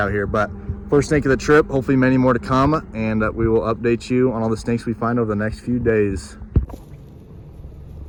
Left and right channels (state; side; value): identical; both; correlation 1.00